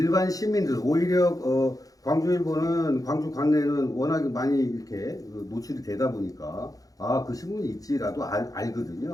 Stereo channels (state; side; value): late; right; 0.17 ms